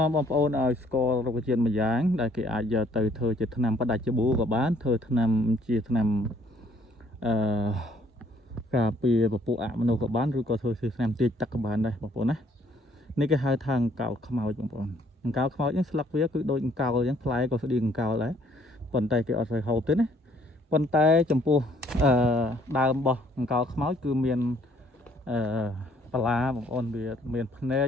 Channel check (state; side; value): normal; both; correlation 0.63